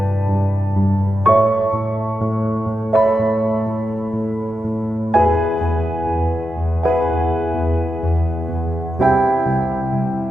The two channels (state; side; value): normal; both; correlation 0.89